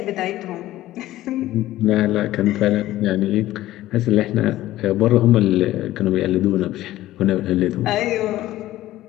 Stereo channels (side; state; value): right; quieter; 15.2 dB